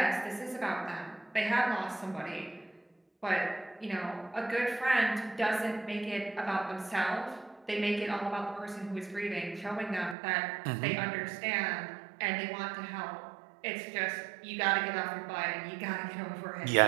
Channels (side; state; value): left; drops out; at 10.2 s